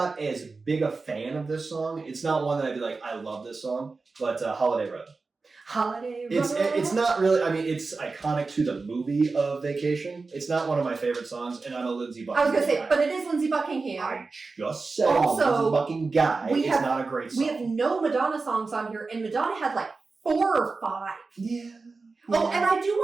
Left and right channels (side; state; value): left; quieter; 4.0 dB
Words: as big a fan of this song. It's not one that I'd be like, I love this song, but Holiday Road. Holiday Road. It's not really, I mean, it's iconic to the movie of Vacation. It's not one of my favorite songs, and I'm a Lindsay Buckingham I was going to say, but it is Lindsay Buckingham. I just said also, Lindsay Buckingham guy. It's not a great song. We have no Madonna songs on here, and Madonna had like 4 or 5. Yeah. Oh, and I do